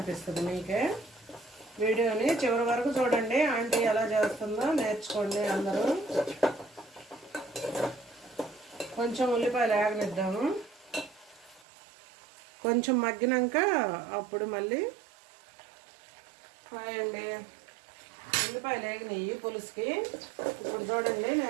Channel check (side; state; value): left; drops out; at 11.7 s